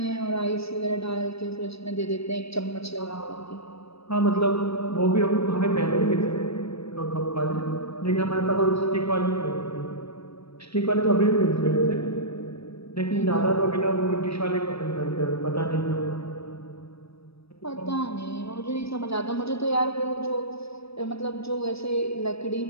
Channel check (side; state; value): right; late; 0.78 ms